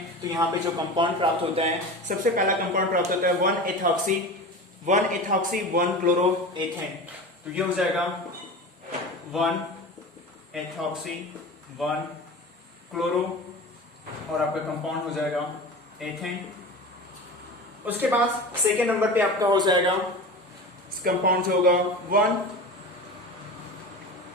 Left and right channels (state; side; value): normal; both; correlation 0.31